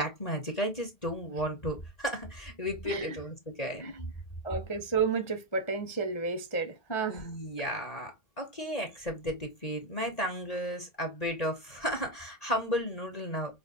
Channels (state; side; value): late; right; 1.9 ms